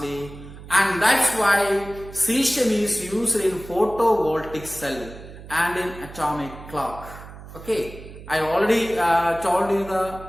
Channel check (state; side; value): noise; right; hum, 15 dB below the sound